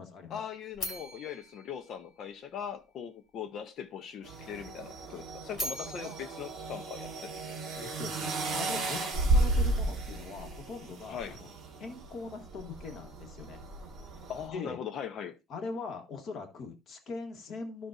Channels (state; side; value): normal; both; correlation 0.48